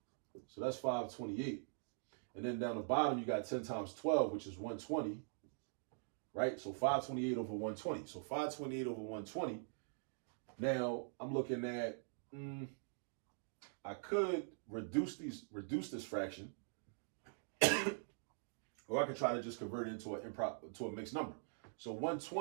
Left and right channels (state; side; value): silent; left; digital silence